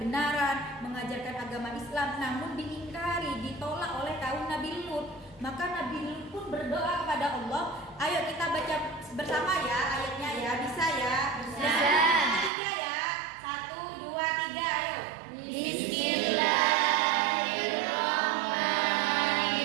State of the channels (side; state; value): left; drops out; at 12.5 s